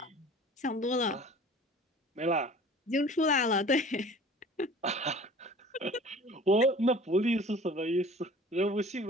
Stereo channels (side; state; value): both; normal; correlation 0.45